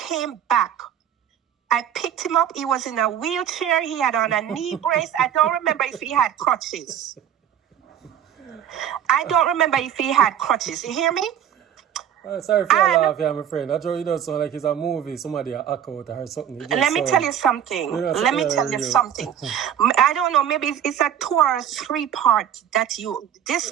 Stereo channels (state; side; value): quieter; left; 9.7 dB